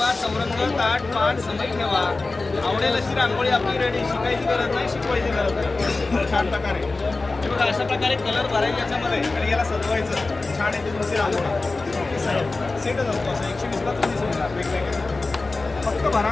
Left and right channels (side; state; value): right; quieter; 3.5 dB